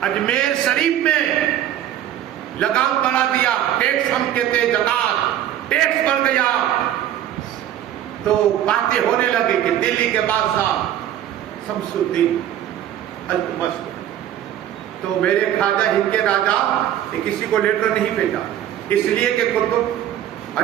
اجمیر شریف میں لگام بڑھا دیا, ٹیکس ہم کہتے زکات, ٹیکس بڑھ گیا, تو باتیں ہونے لگی کہ دلی کے بادشاہ شمس الدین التمش, تو میرے خواجہ ہند کے راجا نے کسی کو لیٹر نہیں بھیجا, اس لیے کہ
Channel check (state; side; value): quieter; left; 11.4 dB